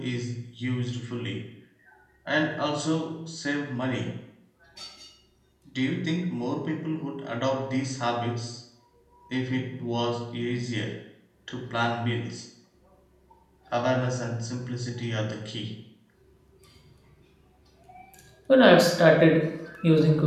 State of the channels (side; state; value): both; identical; correlation 1.00